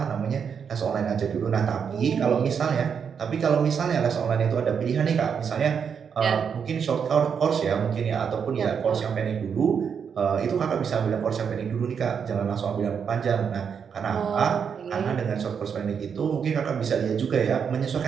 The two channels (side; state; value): left; quieter; 6.9 dB